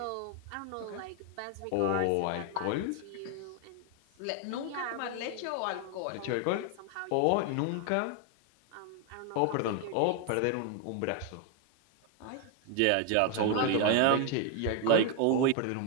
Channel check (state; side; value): different; both; correlation 0.01